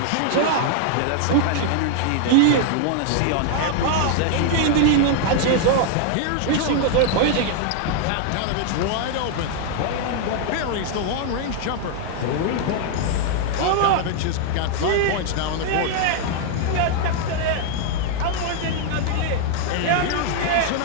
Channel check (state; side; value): different; both; correlation 0.00